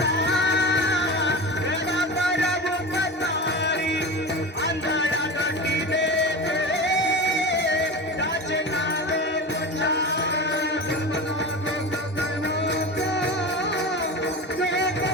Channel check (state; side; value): normal; both; correlation 0.28